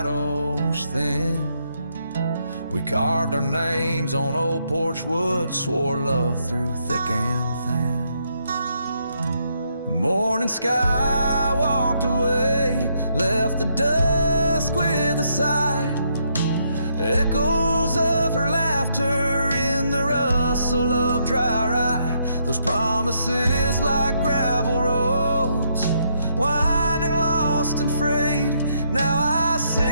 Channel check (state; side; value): inverted; both; correlation -0.75